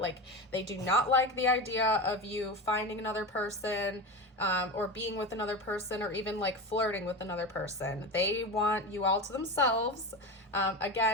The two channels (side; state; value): both; normal; correlation 0.24